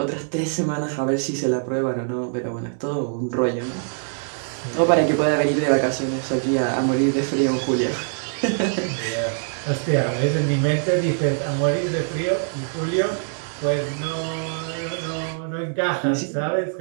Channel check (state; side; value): silent; left; 62 dB below the other